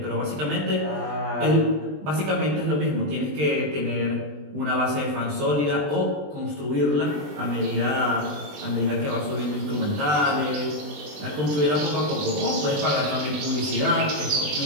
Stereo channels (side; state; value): left; late; 20 ms